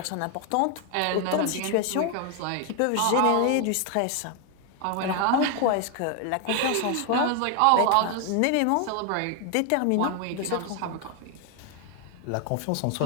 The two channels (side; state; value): both; different; correlation 0.00